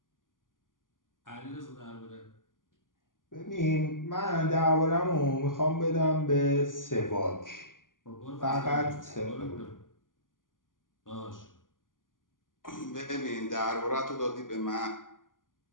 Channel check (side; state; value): right; late; 0.89 ms